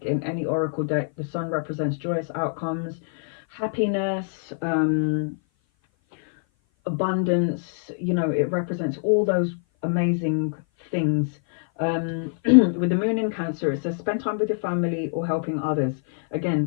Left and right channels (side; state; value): right; silent; 57 dB below the other